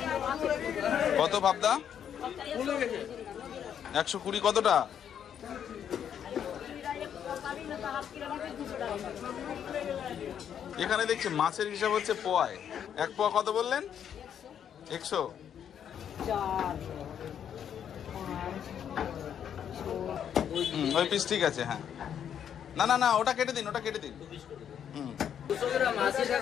কত পাবদা? 120। কতটা? এখানে দেখছি মাছের হিসাব হচ্ছে পোয়ায়। 1 পোয়া কত বললেন? 100। ওই পিস ঠিক আছে। হ্যাঁ না না না, ওটা কেটে দিন, ওটা কেটে দিন। 200 গ্রাম 80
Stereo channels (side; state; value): right; quieter; 8.8 dB